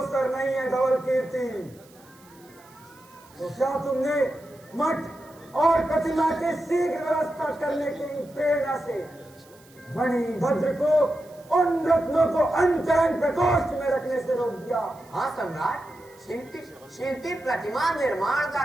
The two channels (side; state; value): right; noise; hiss, 27 dB below the sound